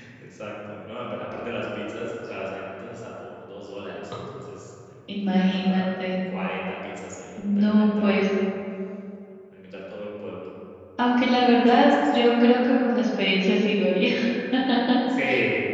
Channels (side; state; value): both; identical; correlation 1.00